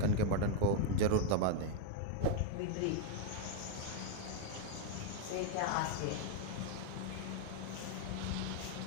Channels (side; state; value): both; different; correlation 0.01